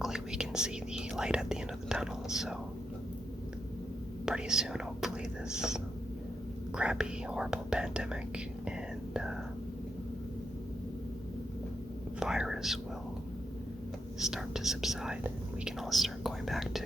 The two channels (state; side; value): normal; both; correlation 0.83